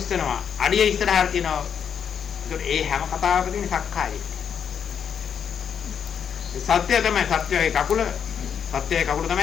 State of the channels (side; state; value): right; quieter; 7.7 dB